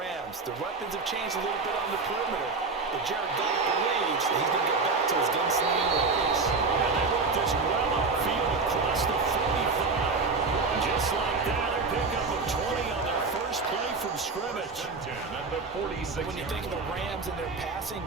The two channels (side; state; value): left; quieter; 4.2 dB